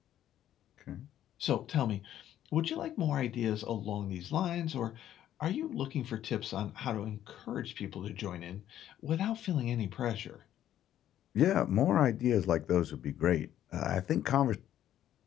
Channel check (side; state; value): right; quieter; 11.6 dB